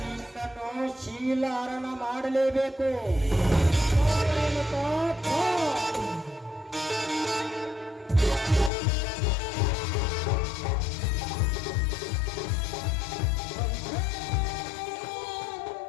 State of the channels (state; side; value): drops out; right; at 8.7 s